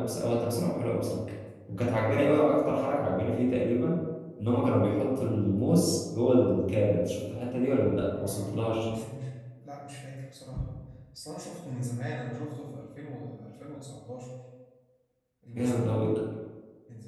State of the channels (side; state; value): both; identical; correlation 1.00